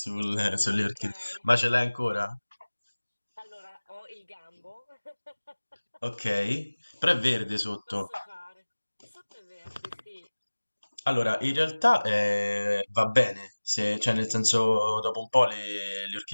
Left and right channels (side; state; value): both; inverted; correlation -1.00